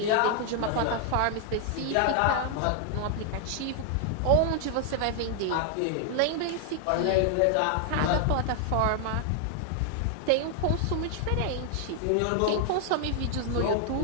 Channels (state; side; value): different; both; correlation 0.00